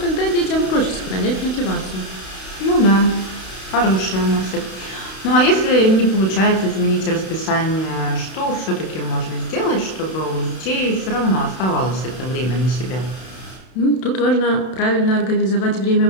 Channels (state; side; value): late; right; 32 ms